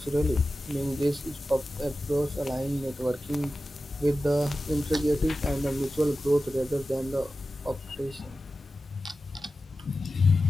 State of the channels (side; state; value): both; normal; correlation 0.93